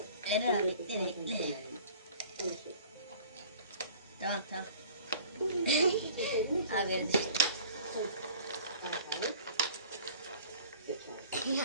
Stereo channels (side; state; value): both; inverted; correlation -0.47